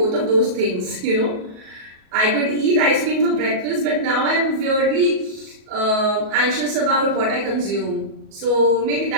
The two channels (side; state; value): left; late; 37 ms